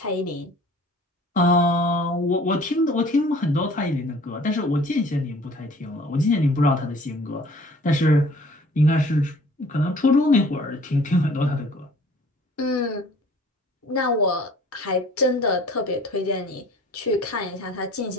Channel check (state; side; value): normal; both; correlation 0.51